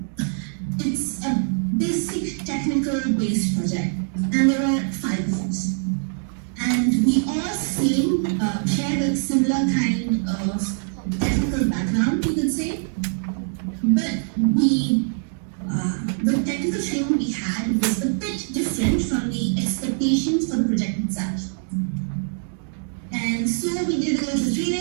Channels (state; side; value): silent; left; 58 dB below the other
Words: It's a basic technical based project, and there are 5 of us. And we all share a similar kind of technical background, you could say. But the technical training we had was a bit different from the expectations for the project itself. And so we did a little